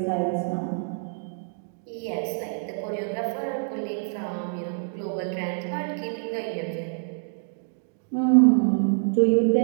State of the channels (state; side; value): silent; left; 61 dB below the other